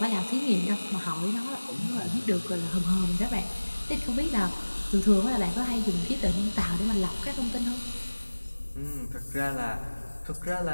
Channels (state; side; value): inverted; both; correlation -1.00